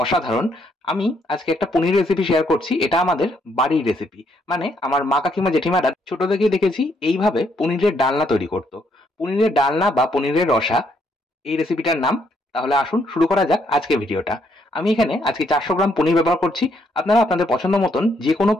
অসাধারণ। আমি আজকে একটা পনির রেসিপি শেয়ার করছি। এটা আমাদের বাড়ির রেসিপি। মানে আমার মা কাকিমা জেঠিমারা ছোট থেকেই দেখেছি এইভাবে পনিরের ডালনা তৈরি করতো। পনিরের ডালনা বা পনিরের রসা এই রেসিপিটার নাম। তাহলে আসুন শুরু করা যাক আজকের ভিডিওটা। আমি এখানে আজকে 400 গ্রাম পনির ব্যবহার করছি। আপনারা আপনাদের পছন্দ মতন যে কোনো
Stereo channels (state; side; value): normal; both; correlation 0.72